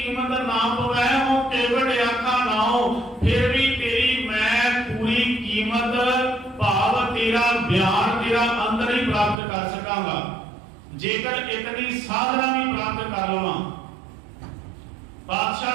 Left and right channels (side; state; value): left; drops out; at 9.3 s